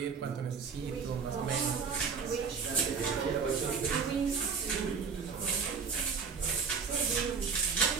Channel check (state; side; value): quieter; left; 5.8 dB